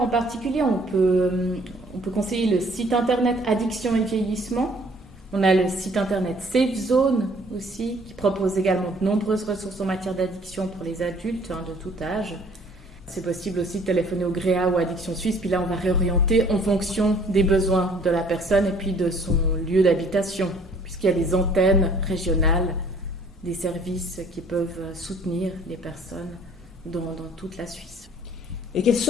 en particulier, on peut conseiller le site internet Addiction et Vieillissement. On a le site internet Safe Zone aussi, qui propose également de nombreuses ressources en matière d'addiction pour les adultes de tout âge. C'est possible aussi de téléphoner au GREA ou Addiction Suisse, puis là on va réorienter en fonction des besoins de la personne et puis de son lieu d'habitation, puisqu'il y a des antennes régionales, des services qui peuvent soutenir les personnes dans toute la Suisse. Et quelles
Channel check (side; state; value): both; normal; correlation 0.57